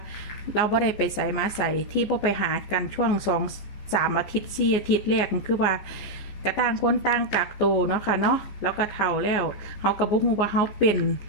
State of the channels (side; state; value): right; late; 14 ms